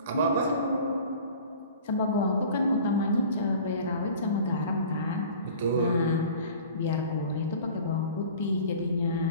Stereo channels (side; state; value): both; inverted; correlation -0.43